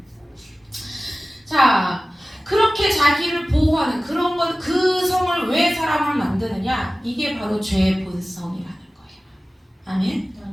자, 그렇게 자기를 보호하는 그런 것, 그 성을 왜 사람을 만드느냐? 이게 바로 죄의 본성이라는 거예요.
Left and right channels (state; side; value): normal; both; correlation 0.97